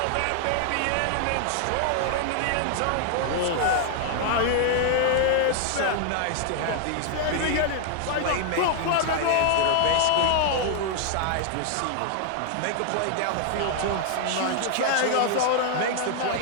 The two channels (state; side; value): different; both; correlation 0.00